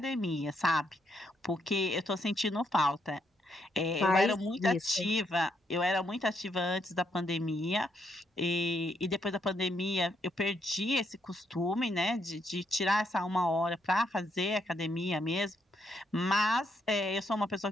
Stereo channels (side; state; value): both; normal; correlation 0.75